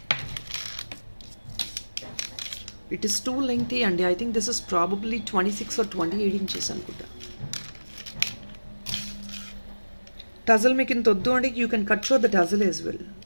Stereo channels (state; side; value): inverted; both; correlation -1.00